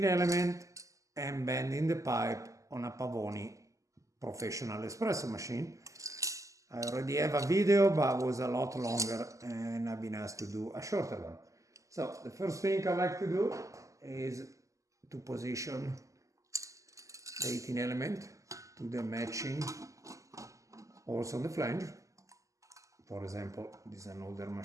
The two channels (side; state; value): left; late; 0.16 ms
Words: element and bending the pipe on a Pavoni Professional espresso machine. I already have a video, but it was a lot longer and I've been asked to do a shorter one. So the first thing I like to do is to position the heating element to the matching holes on the flange. For example, this is an older